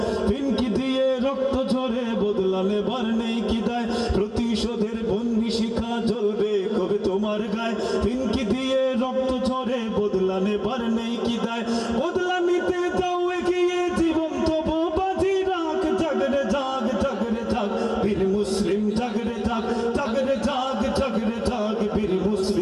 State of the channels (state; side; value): identical; both; correlation 1.00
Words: ফিনকি দিয়ে রক্ত ঝরে বদলা নেবার নেই কি দায় প্রতিশোধের বন্ধি শিখা জ্বলবে কবে তোমার গায়ে ফিনকি দিয়ে রক্ত ঝরে বদলা নেবার নেই কি দায় বদলা নিতে যাও এগিয়ে জীবন তবু বাজি রাখ জাগরে জাগ জাগরে জাগ বীর মুসলিম জাগরে জাগ জাগরে জাগ জাগরে জাগ বীর